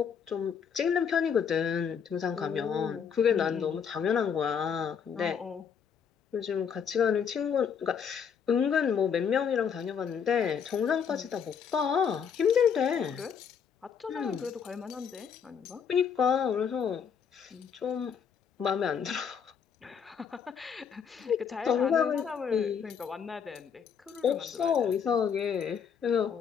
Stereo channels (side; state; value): right; quieter; 7.1 dB